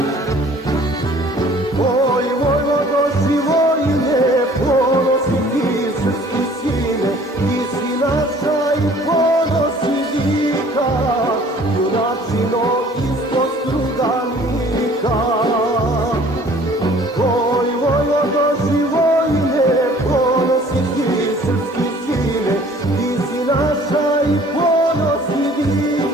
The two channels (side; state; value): both; normal; correlation 0.53